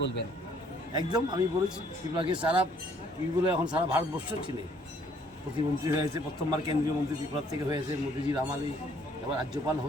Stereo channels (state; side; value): normal; both; correlation 0.63